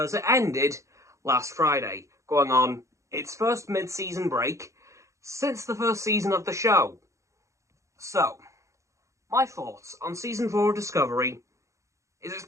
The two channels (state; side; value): late; left; 0.15 ms